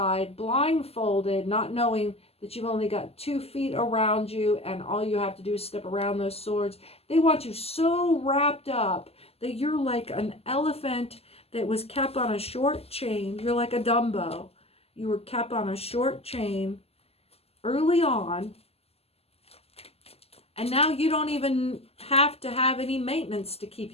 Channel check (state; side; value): late; right; 0.29 ms